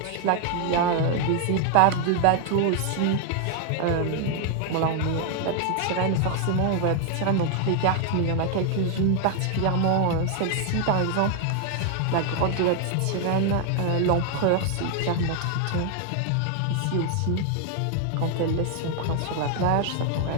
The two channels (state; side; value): different; both; correlation 0.00